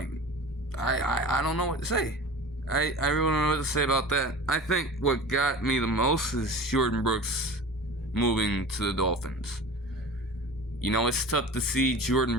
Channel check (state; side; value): normal; both; correlation 0.36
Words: I don't know what to say. I really don't know what to say about that. I think what got me the most is Jordan Brooks moving to the Dolphins. You know, it's tough to see